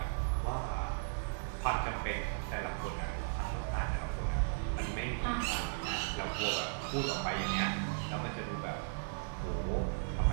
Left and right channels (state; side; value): silent; left; digital silence